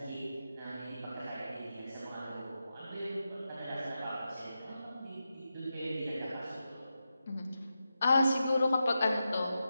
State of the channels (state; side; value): inverted; both; correlation -0.89